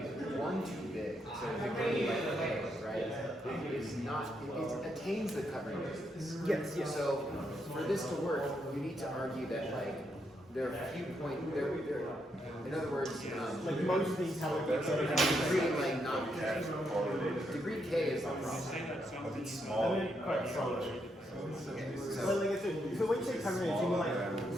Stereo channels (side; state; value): both; normal; correlation 0.79